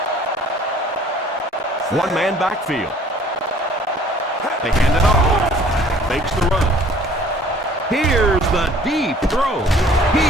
One-man backfield. They hand it off. Fakes the run. Here's the deep throw.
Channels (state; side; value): normal; both; correlation 0.53